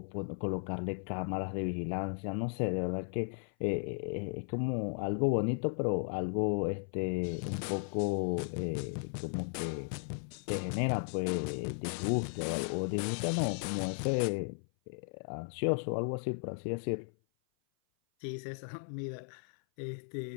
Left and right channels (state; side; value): silent; right; 54 dB below the other